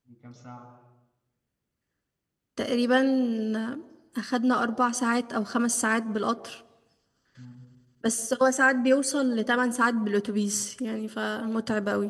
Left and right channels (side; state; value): both; identical; correlation 1.00